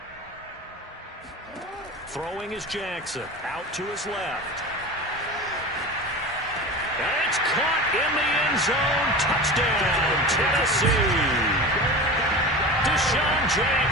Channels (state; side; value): normal; both; correlation 0.31